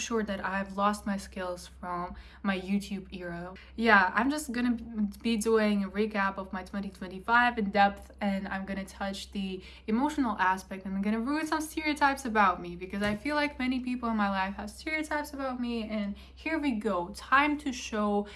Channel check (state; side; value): identical; both; correlation 1.00